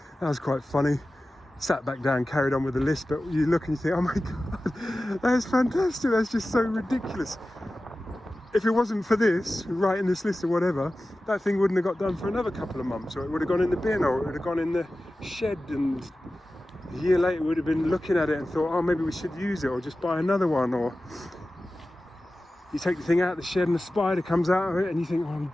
That was quite funny. Sat back down, carried on with the list. But you look and you think, oh my God, that is fantastic. That's just so ridiculous. If it wasn't for this, writing this list or whatever, that thing wouldn't have got done for another couple of months, or it would have gone in the bin, or it would have gone in the shed, and a year later we would have been looking at it and thought, oh, maybe we should use it, or just buy another one. Or you take the thing out of the shed and a spider comes out of it and you think, oh, I'm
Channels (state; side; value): normal; both; correlation 0.95